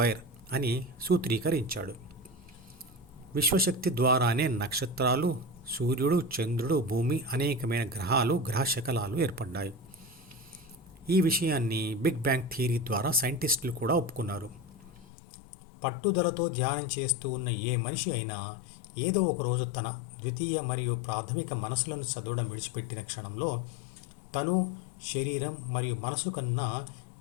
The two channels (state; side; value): drops out; right; at 15.1 s